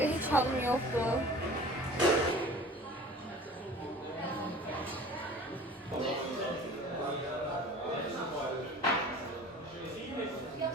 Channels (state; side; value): normal; both; correlation 0.43